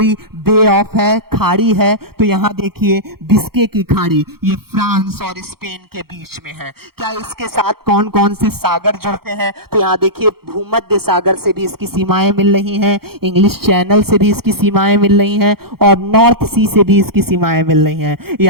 बे ऑफ है, खाड़ी है। तो यहाँ देखिए बिस्के की खाड़ी, ये फ्रांस और स्पेन के बीच में है। क्या इसके साथ कौन कौन से सागर जुड़ते हैं। तो यहाँ देखिए भूमध्य सागर से भी इसकी सीमाएं मिल रही हैं, इंग्लिश चैनल से भी इसकी सीमाएं मिल रही हैं और नॉर्थ सी से भी इसकी सीमाएं मिल रही हैं।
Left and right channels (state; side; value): late; left; 0.94 ms